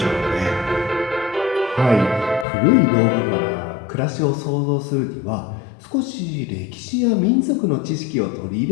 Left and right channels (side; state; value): right; drops out; at 2.5 s